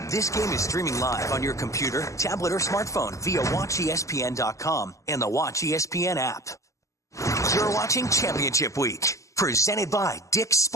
This game is streaming live on your computer, tablet, or smartphone via WatchESPN.com and the Watch ESPN app. You're watching Championship Week, presented by Dick's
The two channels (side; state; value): right; late; 0.16 ms